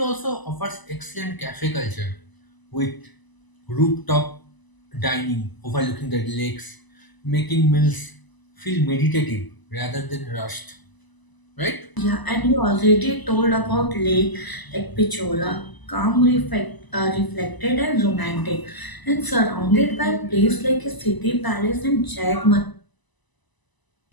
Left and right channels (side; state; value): right; late; 1.0 ms